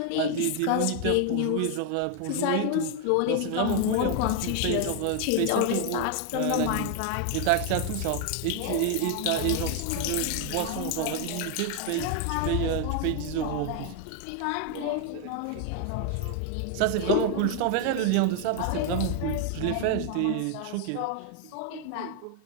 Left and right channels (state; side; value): different; both; correlation 0.01